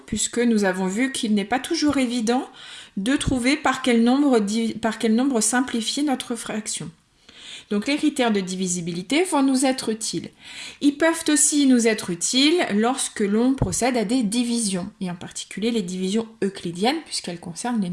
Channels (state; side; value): identical; both; correlation 1.00